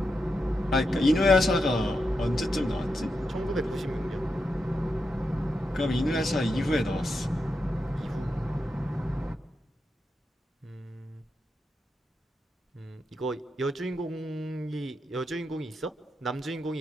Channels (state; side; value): normal; both; correlation 0.86